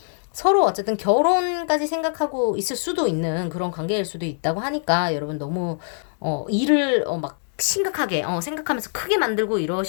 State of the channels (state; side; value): silent; right; 63 dB below the other